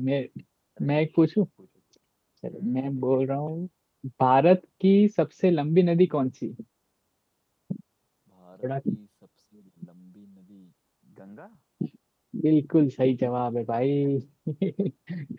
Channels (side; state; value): both; identical; correlation 1.00